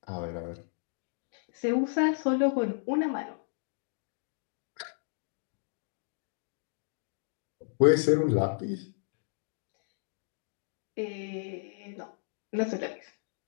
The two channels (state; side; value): silent; right; digital silence